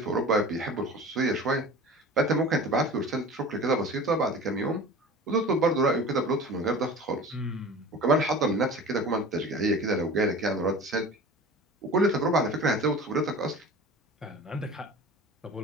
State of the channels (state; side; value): normal; both; correlation 0.38